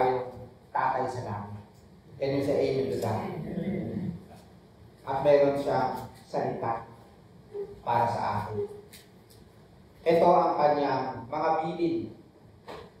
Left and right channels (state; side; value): identical; both; correlation 1.00